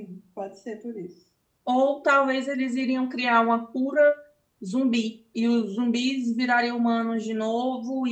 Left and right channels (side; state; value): both; identical; correlation 1.00